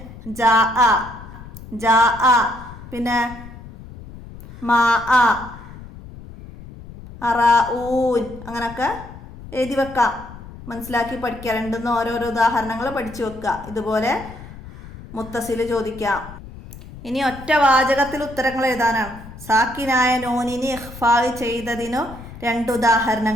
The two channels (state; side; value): noise; left; rumble, 15 dB below the sound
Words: ജാ പിന്നെ മാ അറാഊൻ അങ്ങനെയൊക്കെ എഴുതി വെക്കാം, മനസ്സിലാക്കി പഠിക്കുക. രണ്ടും ഓരോരോ ഉദാഹരണങ്ങൾ പഠിച്ചു വെക്കുക. ഇതുപോലെ മുത്തസിൽ ചോദിക്കാം. ഇനി ഒറ്റ വാചകത്തിൽ ഉത്തരങ്ങൾ എഴുതാനാണ്. സാക്കിനായ നൂനിനെ ഇഖ്ഫാ ചെയ്തതിനു 2